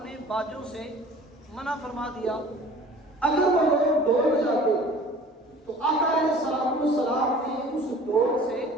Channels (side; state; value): both; normal; correlation 0.46